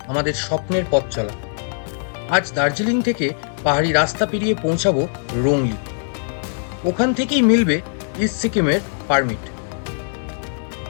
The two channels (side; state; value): right; silent; digital silence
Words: আমাদের স্বপ্নের পথ চলা। আজ দার্জিলিং থেকে পাহাড়ি রাস্তা পেরিয়ে পৌঁছাবো রোংলি। ওখান থেকেই মিলবে ইস্ট সিকিমের পারমিট।